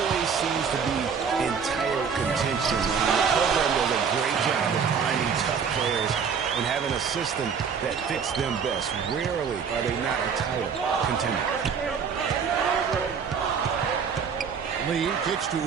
seems to be in title contention. The program does a great job of finding tough players and having a system that fits them best. Rarely are they not a title contender. Lee kicks to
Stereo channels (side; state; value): left; quieter; 6.4 dB